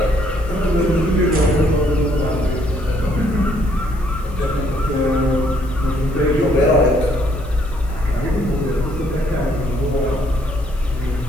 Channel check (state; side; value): noise; left; hiss, 26 dB below the sound